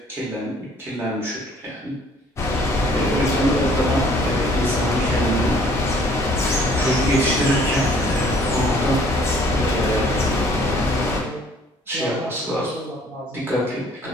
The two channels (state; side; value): normal; both; correlation 0.58